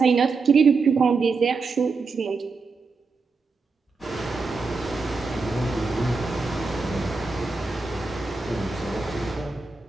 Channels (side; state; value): left; quieter; 4.3 dB